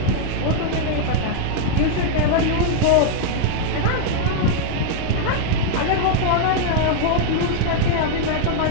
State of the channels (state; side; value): different; both; correlation -0.01